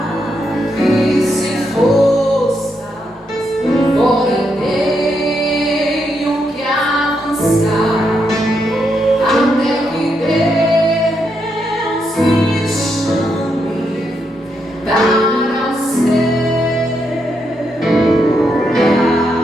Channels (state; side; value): normal; both; correlation 0.80